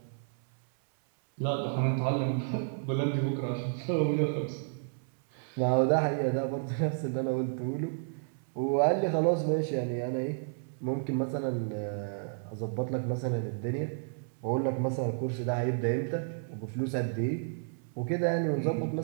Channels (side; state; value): left; silent; 57 dB below the other